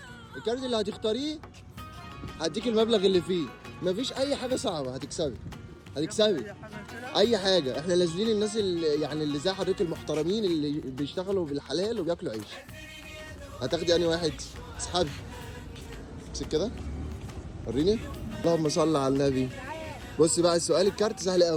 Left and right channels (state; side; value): identical; both; correlation 1.00